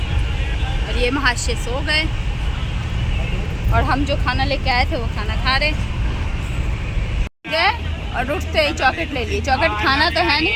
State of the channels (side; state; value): both; identical; correlation 1.00